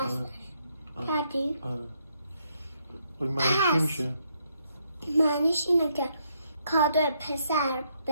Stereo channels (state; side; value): inverted; both; correlation -0.74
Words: کردی؟ آره. معنیش چی میشه؟ معنیش اینه که کادو پسر